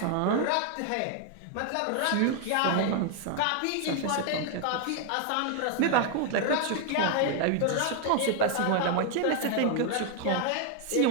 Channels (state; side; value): different; both; correlation 0.00